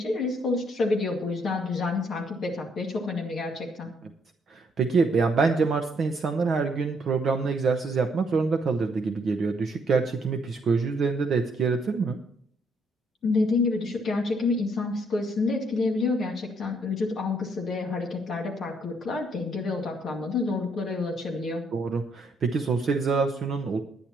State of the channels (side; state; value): both; normal; correlation 0.71